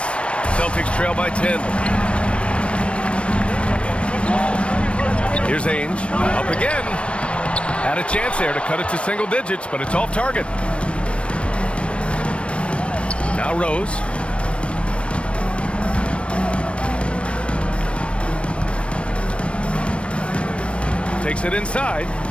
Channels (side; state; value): right; late; 0.060 ms